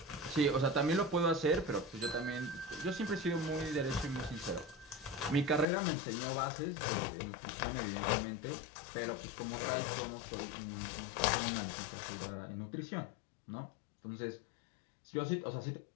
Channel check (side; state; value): right; drops out; at 5.7 s